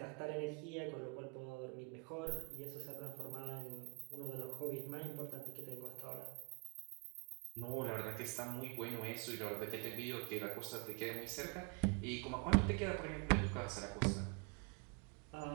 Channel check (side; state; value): left; quieter; 34.0 dB